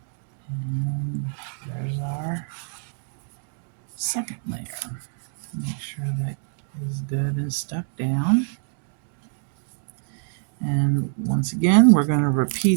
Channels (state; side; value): silent; left; digital silence